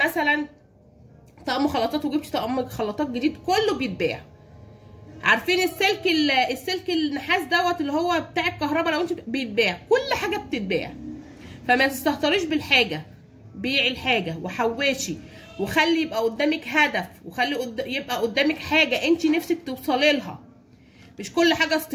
طقم خلاطات وجبتي طقم خلاطات جديد، كله بيتباع. عارفين السلك النحاس دوت اللي هو بتاع الكهرباء، لو انت بيتباع، كل حاجه بتتباع. فما تستهتريش بالحاجه، بيعي الحاجه وحوشي، وخلي يبقى قدامك هدف، وخلي يبقى قدامك حاجه انت نفسك توصلي لها. مش كل حاجه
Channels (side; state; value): both; identical; correlation 1.00